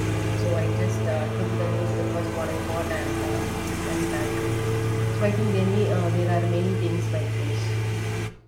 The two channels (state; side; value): identical; both; correlation 1.00